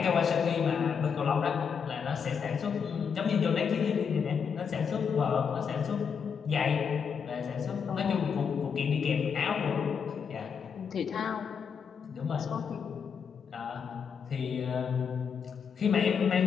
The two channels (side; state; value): right; quieter; 6.6 dB